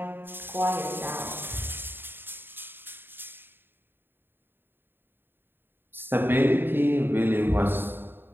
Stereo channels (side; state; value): left; late; 0.099 ms